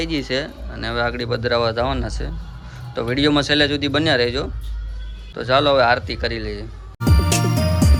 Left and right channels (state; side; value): identical; both; correlation 1.00